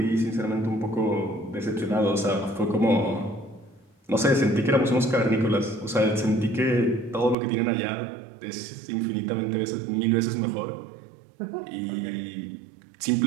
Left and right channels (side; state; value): left; drops out; at 7.4 s